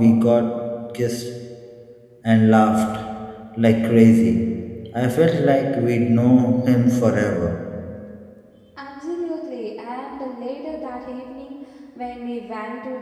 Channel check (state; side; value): identical; both; correlation 1.00